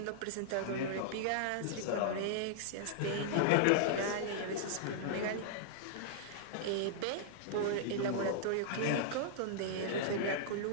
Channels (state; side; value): different; both; correlation -0.01